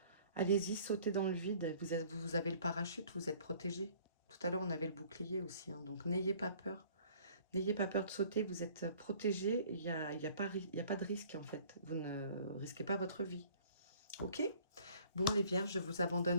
Allez-y, sautez dans le vide. Vous avez le parachute, vous êtes protégé. Tout à l'heure, on avait le bouclier aussi. Hein, donc, n'ayez pas peur. N'ayez pas peur de sauter. Vous êtes protégé. Il y a pas de risque, en fait. Vous ne risquez pas votre vie. OK? Bon, les vierges, je vous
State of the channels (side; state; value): both; inverted; correlation -0.54